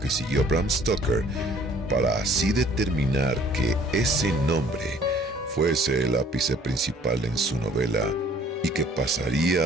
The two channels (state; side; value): normal; both; correlation 0.56